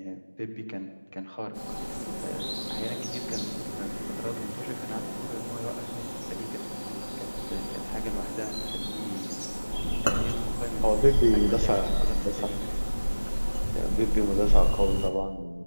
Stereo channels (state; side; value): inverted; both; correlation -1.00